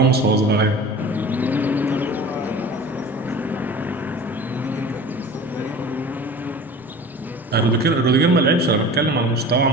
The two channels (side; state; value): both; normal; correlation 0.39